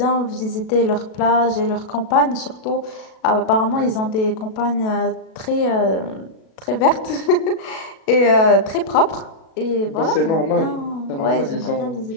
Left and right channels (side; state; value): right; late; 37 ms